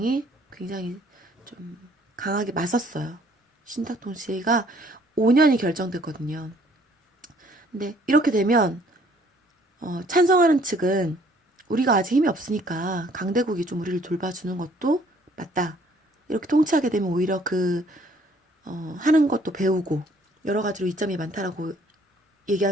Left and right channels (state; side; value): normal; both; correlation 0.61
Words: 굉장히 좀 강하게 맞섰어요. 신탁 통치가 5년이 결정됐거든요. 근데 이렇게 되면 찬성하는 측은 우리가 아직 힘이 없으니까 강대국이 좀 우리를 돌봐주는 것도 맞다. 이렇게 통치하게 되면 오히려 하는 것도 배우고 여러 가지로 이점이 많다라고